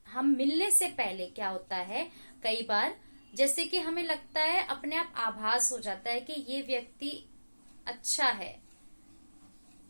हम मिलने से पहले क्या होता है, कई बार जैसे कि हमें लगता है, अपने आप आभास हो जाता है कि ये व्यक्ति अच्छा है,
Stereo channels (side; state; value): both; inverted; correlation -1.00